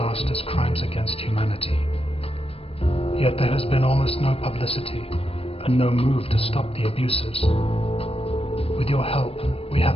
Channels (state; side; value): late; right; 0.28 ms